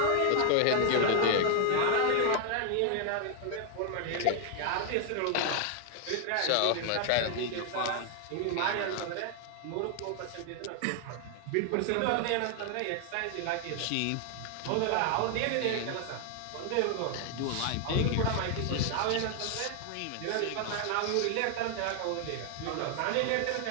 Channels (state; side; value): different; both; correlation 0.00